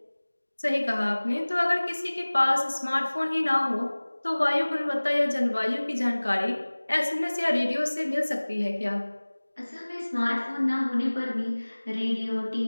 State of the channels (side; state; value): both; inverted; correlation -1.00